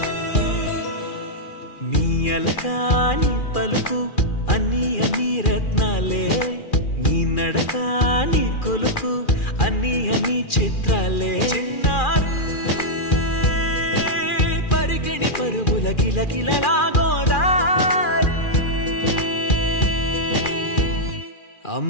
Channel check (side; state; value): right; late; 2.4 ms